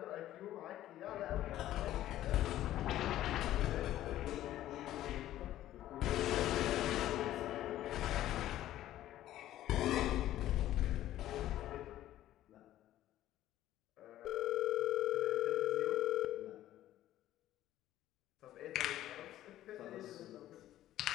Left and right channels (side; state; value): right; quieter; 13.5 dB